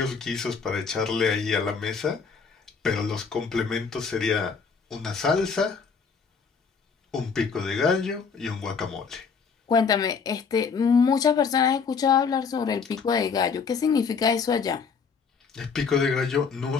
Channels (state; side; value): quieter; right; 5.6 dB